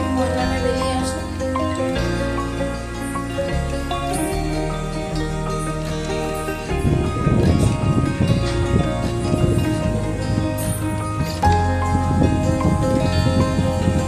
ময়লাটা বেরিয়ে আসে।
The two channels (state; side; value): identical; both; correlation 1.00